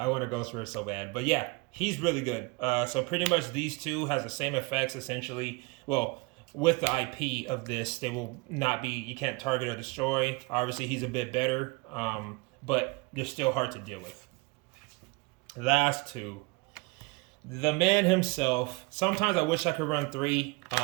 want a ghost rare so bad. But yeah, he's really good. So pretty much these two has the same effects essentially. Well, with the IP of this, they will not be. You can't target or destroy. Obviously, he's a bit better, but they're still hard to deal with. Last two. The man himself. Sometimes I wish I could run 3,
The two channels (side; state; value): left; quieter; 25.9 dB